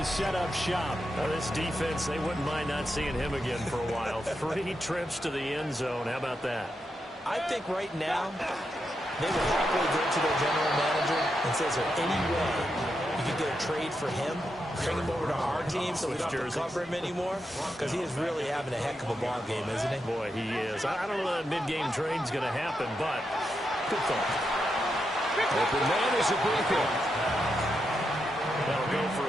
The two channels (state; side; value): normal; both; correlation 0.85